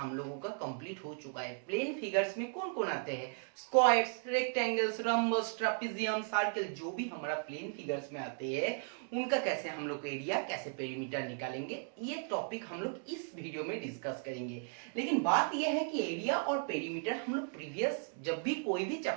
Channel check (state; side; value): silent; left; 54 dB below the other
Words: लोगों का कंप्लीट हो चुका है। प्लेन फिगर्स में कौन कौन आते हैं? Squares, rectangles, rhombus, trapezium, circle, जो भी हमारा प्लेन फिगर्स में आते हैं उनका कैसे हम लोग एरिया कैसे पेरीमीटर निकालेंगे, ये टॉपिक हम लोग इस वीडियो में डिस्कस करेंगे। लेकिन बात यह है कि एरिया और पेरीमीटर हम लोग प्रीवियस जब भी कोई भी